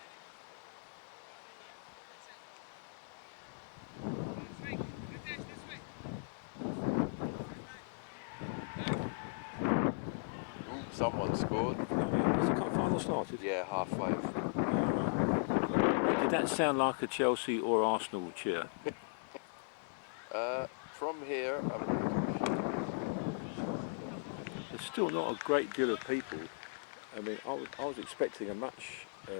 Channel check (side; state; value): right; silent; digital silence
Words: Someone scored. Has the cup final started? Yeah, 5:30. Did that sound like a Chelsea or Arsenal cheer? From here, There's still not a great deal of people. I mean, I was expecting a